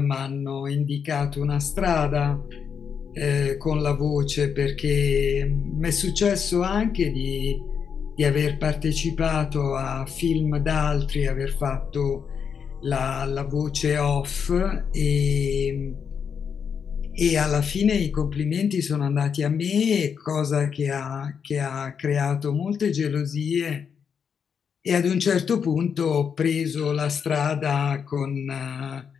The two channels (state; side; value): quieter; right; 6.9 dB